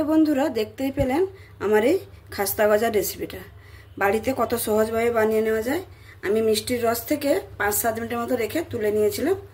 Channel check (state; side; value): identical; both; correlation 1.00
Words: বন্ধুরা দেখতেই পেলেন আমার এই খাস্তা গজার রেসিপিটা বাড়িতে কত সহজভাবে বানিয়ে নেওয়া যায়। আমি মিষ্টির রস থেকে 5-7 মিনিটের মতো রেখে তুলে নিয়েছিলাম।